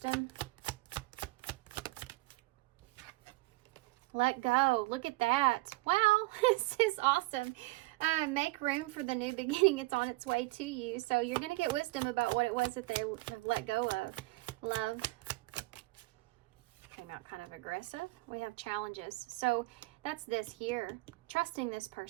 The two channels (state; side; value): quieter; left; 21.7 dB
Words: Let go. Look at that. Wow, this is awesome. Make room for the new beginning. It's on its way to you. So you're going to get wisdom about what it was that they have let go of. Love. Came out kind of aggressive. We have challenges. So that's this here. Trusting this